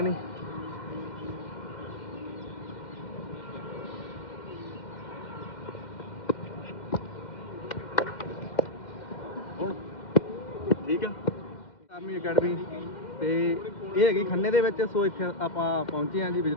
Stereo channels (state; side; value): late; right; 2.1 ms